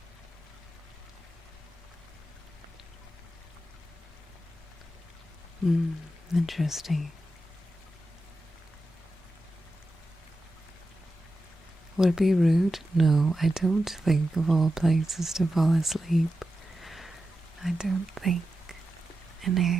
Interesting. Would it be rude? No, I don't think of all places to fall asleep. I don't think an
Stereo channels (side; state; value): both; normal; correlation 0.90